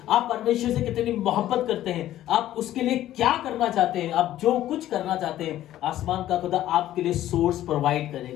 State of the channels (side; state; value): right; quieter; 13.3 dB